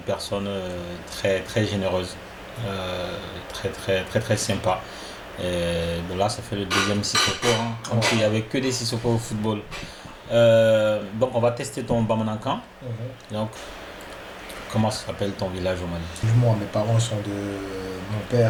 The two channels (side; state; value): both; identical; correlation 1.00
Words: très très généreuse, très très très très sympa. Et de là, ça fait le deuxième Sissoko. Hein. Comme s'il n'y avait que des Sissoko au football. Donc, on va tester ton Bamanankan. Donc, comment s'appelle ton village au Mali? moi, mes parents sont de. Mon